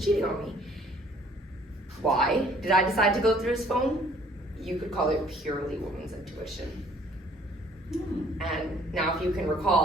on me. Why did I decide to go through his phone? You could call it purely woman's intuition. And now if you can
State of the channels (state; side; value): normal; both; correlation 0.59